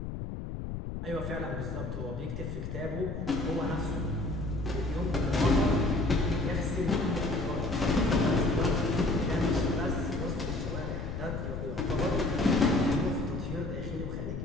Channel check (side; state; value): left; noise; rumble, 6 dB below the sound